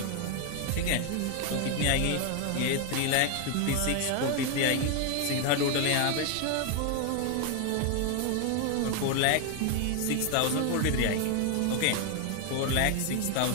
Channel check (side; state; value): both; different; correlation 0.01